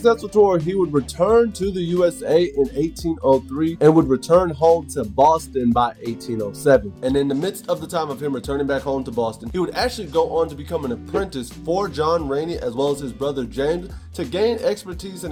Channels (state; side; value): identical; both; correlation 1.00